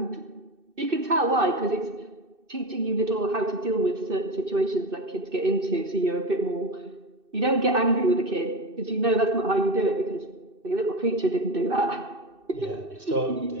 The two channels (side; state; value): left; late; 2.6 ms